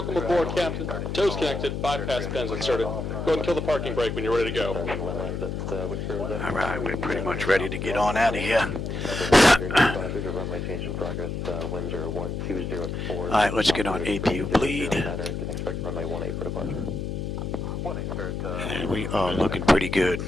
aboard, Captain. Tow's connected. Bypass pins inserted. Go ahead and kill the parking brake when you're ready to go. Alright, we're pretty much ready to get on out of here. Runway change in progress. Winds are 120 at 4. Alright, let's get on APU bleed. Can expect runway 18 for departure. And we are looking pretty good.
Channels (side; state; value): left; noise; hum, 4 dB below the sound